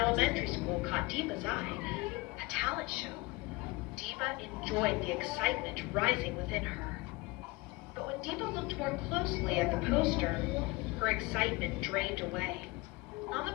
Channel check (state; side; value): quieter; right; 23.7 dB